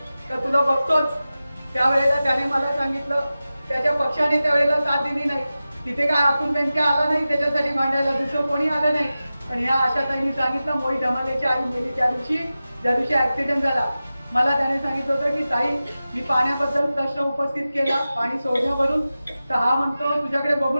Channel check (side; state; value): both; inverted; correlation -0.95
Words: का तुला बघतोच, त्यावेळेला त्याने मला सांगितलं त्याच्या पक्षाने त्यावेळेला साथ दिली नाही. तिथे काय अतुल बेनके आला नाही त्याच्यासाठी मांडायला, दुसरं कोणी आलं नाही. पण ह्या आशाताईंनी सांगितलं, मोही धमालेची आई मेली त्या दिवशी ऍक्सिडेंट झाला. मला त्याने सांगितलं होतं की ताई, मी पाण्याबद्दल प्रश्न उपस्थित केला पाणी सोडण्यावरून, तर हा म्हणतो तुझ्याकडे